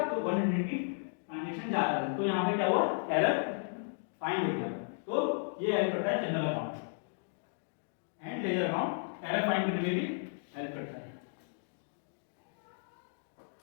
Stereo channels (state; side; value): silent; right; digital silence